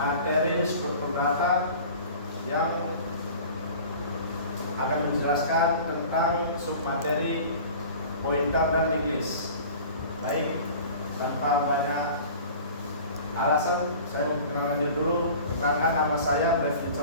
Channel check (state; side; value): inverted; both; correlation -0.42